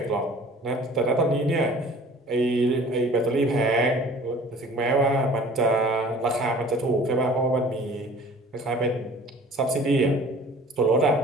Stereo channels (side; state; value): both; normal; correlation 0.48